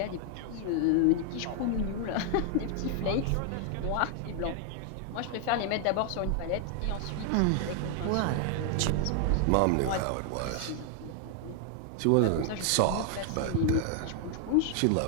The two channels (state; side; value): different; both; correlation 0.00